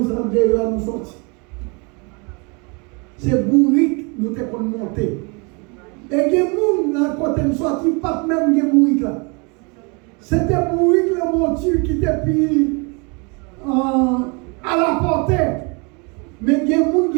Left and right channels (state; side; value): quieter; left; 31.7 dB